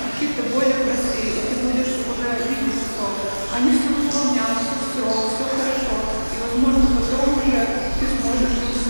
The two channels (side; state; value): both; inverted; correlation -1.00